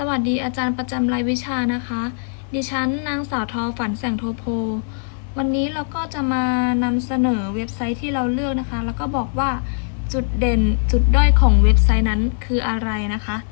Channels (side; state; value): right; silent; 57 dB below the other